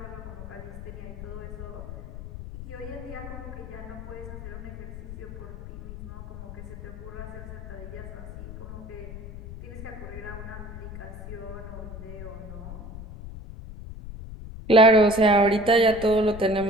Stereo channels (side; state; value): left; noise; rumble, 11 dB below the sound